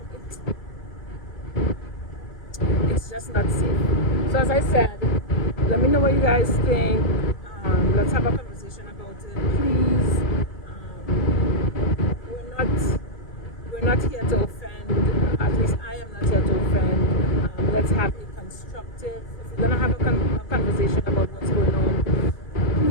It's just not safe. So as I said, let me know what you guys think. Let's have a conversation about it, please. We're not here to offend. At least I am not here to offend. Let's have a constructive. If we're gonna have a conversation about what's going on,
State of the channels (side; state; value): right; late; 2.4 ms